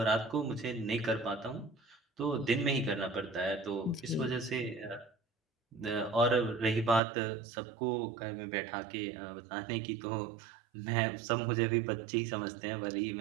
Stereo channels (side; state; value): left; drops out; at 7.0 s